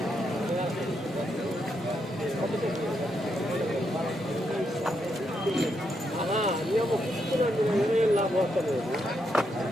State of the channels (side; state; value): both; normal; correlation 0.80